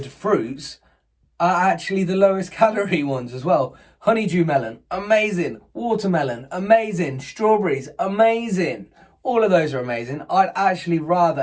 fruits are actually the lowest calorie ones as well. Honeydew melon, amazing. Watermelon, amazing. Strawberries, amazing. All of those are amazing. I'd actually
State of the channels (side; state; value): both; identical; correlation 1.00